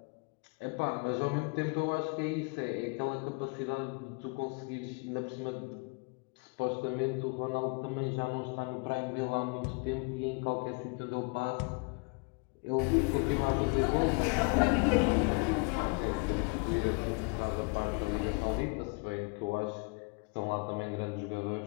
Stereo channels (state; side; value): quieter; right; 32.9 dB